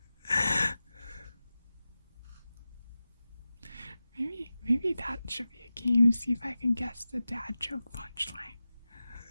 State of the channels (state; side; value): inverted; both; correlation -0.95